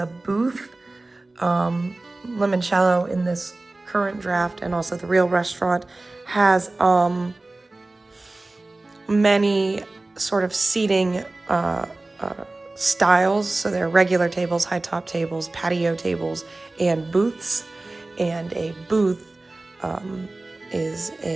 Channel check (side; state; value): left; quieter; 3.0 dB